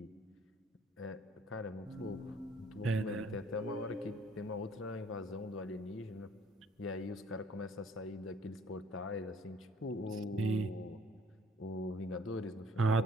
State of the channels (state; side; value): normal; both; correlation 0.58